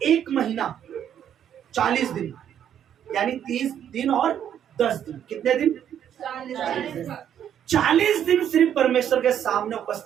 1 महीना 40 दिन यानी 30 दिन और 10 दिन, कितने दिन? 40 दिन सिर्फ परमेश्वर के सामने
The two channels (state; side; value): quieter; left; 9.6 dB